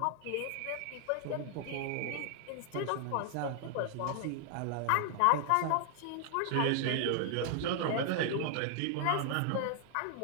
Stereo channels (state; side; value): different; both; correlation 0.00